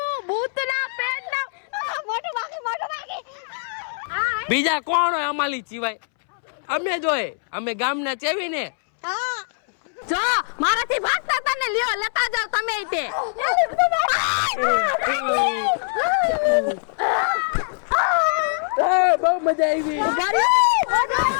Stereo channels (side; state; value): right; silent; 63 dB below the other